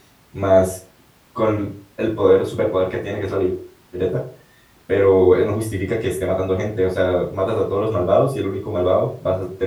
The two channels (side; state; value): both; identical; correlation 1.00